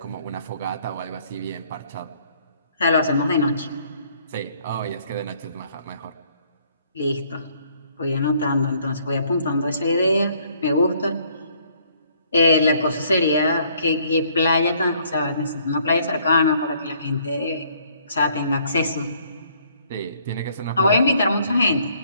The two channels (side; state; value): both; inverted; correlation -0.64